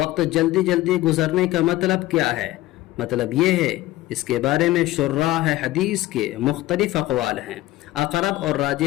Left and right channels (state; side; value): quieter; right; 16.8 dB